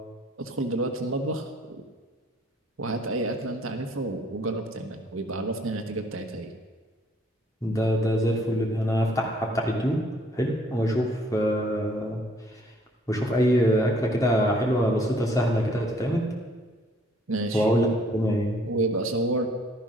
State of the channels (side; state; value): both; normal; correlation 0.61